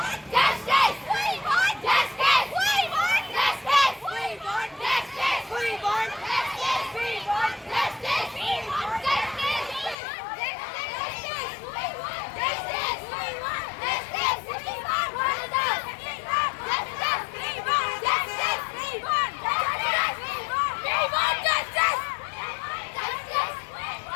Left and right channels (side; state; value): right; drops out; at 10.0 s